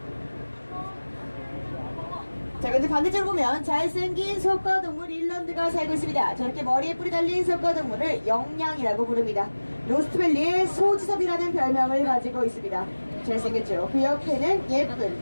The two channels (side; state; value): both; inverted; correlation -1.00